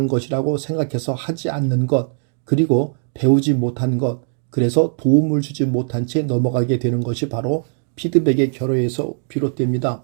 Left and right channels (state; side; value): silent; left; digital silence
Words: 것이라고 생각해서 하지 않는 것, 그리고 배우지 못한 것, 그래서 도움을 주지 못한 채 넘어가게 되는 것이 바로 피드백의 결여에서 비롯됩니다.